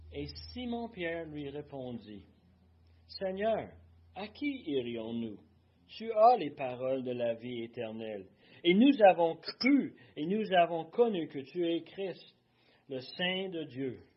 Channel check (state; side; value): identical; both; correlation 1.00